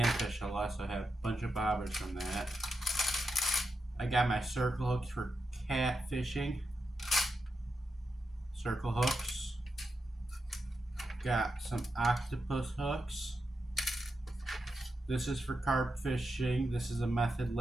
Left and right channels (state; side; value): normal; both; correlation 0.87